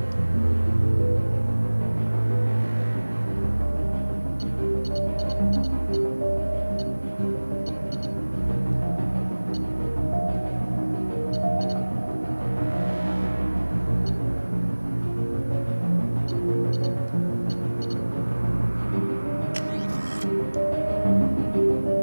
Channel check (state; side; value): inverted; both; correlation -1.00